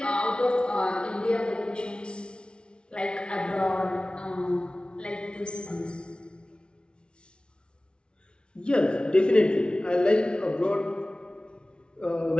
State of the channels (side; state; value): right; late; 0.057 ms